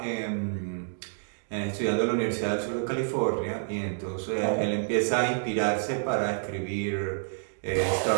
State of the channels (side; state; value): left; silent; digital silence